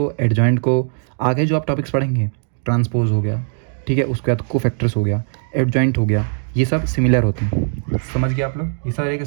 एडजॉइंट को आगे जो आप टॉपिक्स पढ़ेंगे, ट्रांसपोज हो गया, ठीक है, उसके बाद कोफैक्टर्स हो गया, एडजॉइंट हो गया, ये सब सिमिलर होते हैं। समझ गए आप लोग, ये सारे के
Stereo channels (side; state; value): left; silent; 55 dB below the other